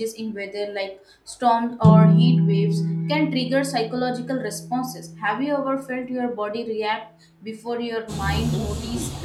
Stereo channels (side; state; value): both; identical; correlation 1.00